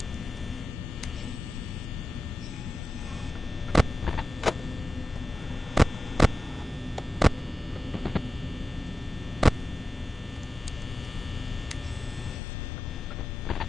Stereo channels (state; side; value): normal; both; correlation 0.93